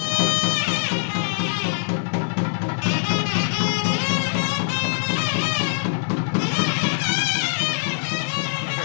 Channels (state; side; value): silent; right; digital silence